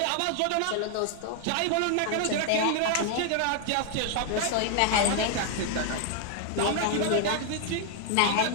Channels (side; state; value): both; different; correlation 0.00